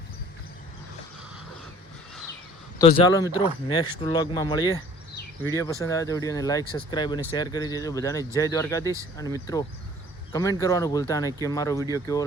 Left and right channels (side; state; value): both; normal; correlation 0.52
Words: તો ચાલો મિત્રો નેક્સ્ટ વ્લોગમાં મળીએ. વિડીયો પસંદ આવે તો વિડીયોને લાઇક સબસ્ક્રાઈબ અને શેર કરી દેજો. બધાને જય દ્વારકાધીશ. અને મિત્રો કમેન્ટ કરવાનું ભૂલતા નહીં કે મારો વિડીયો કેવો